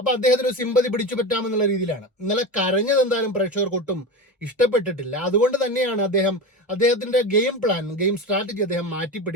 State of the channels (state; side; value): normal; both; correlation 0.24